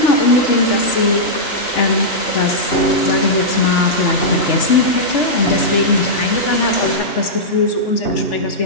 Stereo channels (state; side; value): late; right; 3.4 ms